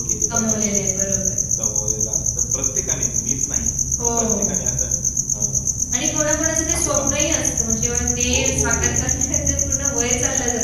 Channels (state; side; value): identical; both; correlation 1.00